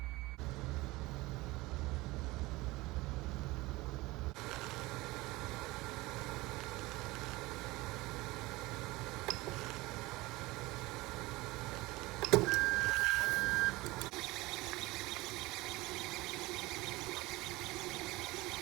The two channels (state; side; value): quieter; left; 20.8 dB